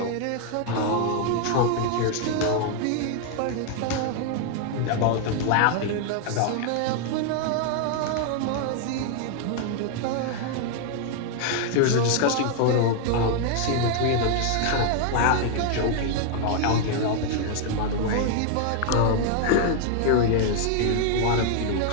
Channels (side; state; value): both; different; correlation 0.00